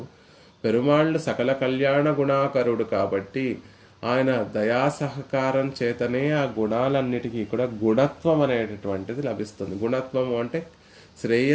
పెరుమాళ్ళు సకల కళ్యాణ గుణాకరుడు కాబట్టి ఆయన దయా సహకారం చేతనే ఆ గుణాలన్నిటికీ కూడా గుణత్వం అనేటటువంటిది లభిస్తుంది. గుణత్వము అంటే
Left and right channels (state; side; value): identical; both; correlation 1.00